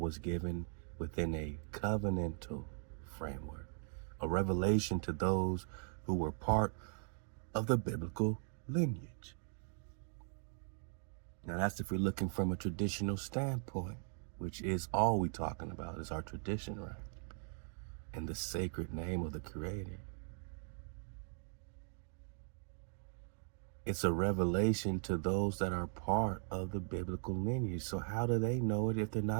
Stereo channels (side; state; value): left; silent; 51 dB below the other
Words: given within a covenantal framework, a revelation to those who were part of the biblical lineage. Now that's if we're looking from a traditional standpoint. which is all we talking about, is our tradition, right? And the sacred name of the Creator. It's a revelation to those that are part of the biblical lineage. So how do they know it if they're